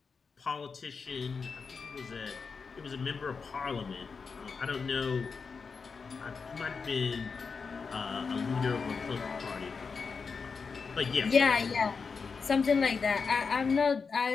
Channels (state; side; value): quieter; right; 5.2 dB